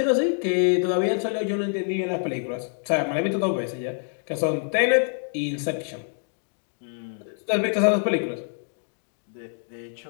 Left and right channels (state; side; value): silent; right; 61 dB below the other